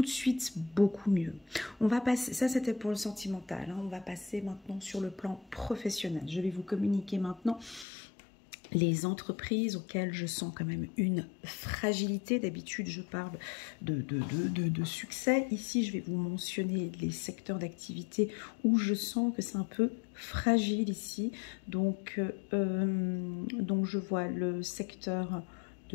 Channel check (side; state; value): right; drops out; at 7.9 s